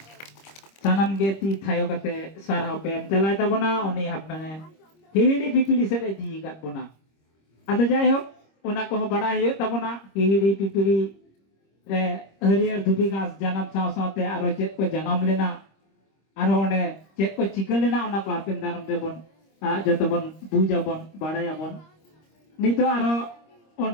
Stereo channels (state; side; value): late; right; 26 ms